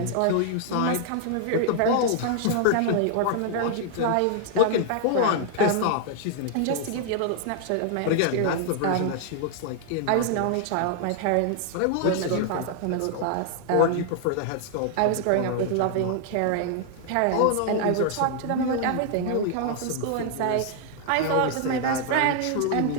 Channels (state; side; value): different; both; correlation 0.00